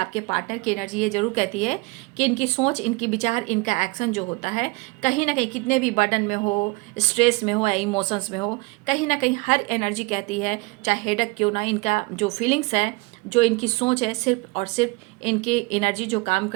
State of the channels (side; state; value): left; quieter; 26.6 dB